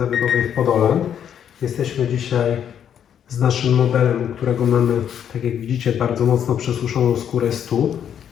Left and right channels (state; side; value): quieter; right; 9.0 dB